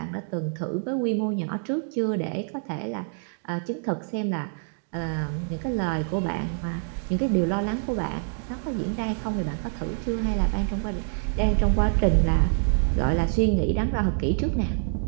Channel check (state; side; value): silent; left; 61 dB below the other